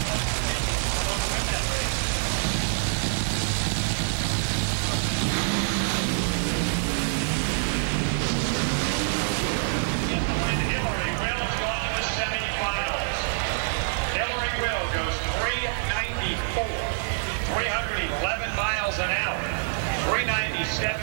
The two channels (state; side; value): silent; left; 61 dB below the other